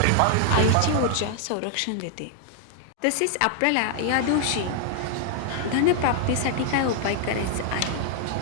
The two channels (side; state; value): both; different; correlation 0.00